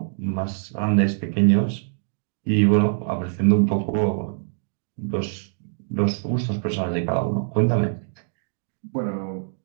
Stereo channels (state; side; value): silent; left; digital silence